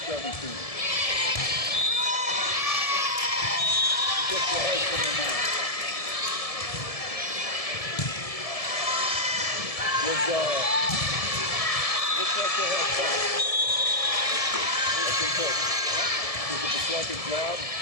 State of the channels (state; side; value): late; right; 1.7 ms